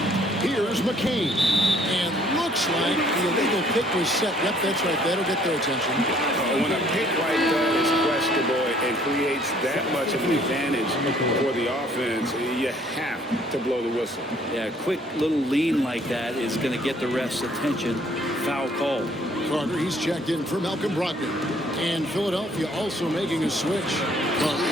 Here's McCain. And looks like the illegal pick was set. Yep, that's right. That'll get their attention. When a pick like that is questionable and creates that much of an advantage for the offense, you have to blow the whistle. Yeah, a quick little lean like that is going to get the ref's attention. Foul call. Carter, he's checked in for Malcolm Brogdon. And Philadelphia also making a switch. Carter,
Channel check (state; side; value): normal; both; correlation 0.61